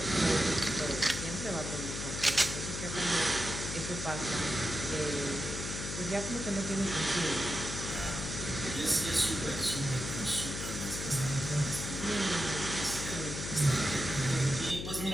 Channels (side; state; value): left; noise; hum, 6 dB below the sound